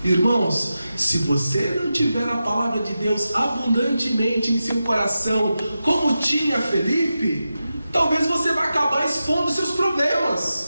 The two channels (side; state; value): both; inverted; correlation -0.91